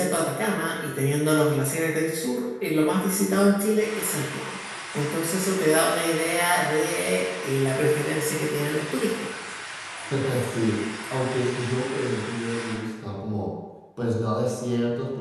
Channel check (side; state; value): both; identical; correlation 1.00